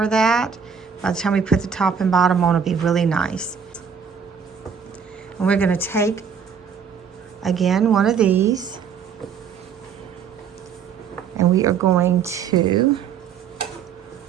that? By the time we put the top and bottom on, it'll be really nice. And we're going to take, again, one of these, and we are going to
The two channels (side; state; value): left; quieter; 6.9 dB